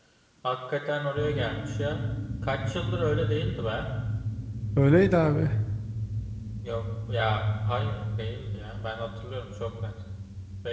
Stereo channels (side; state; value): both; identical; correlation 1.00